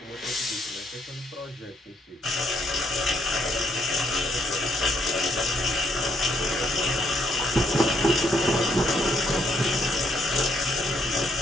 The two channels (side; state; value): both; normal; correlation 0.72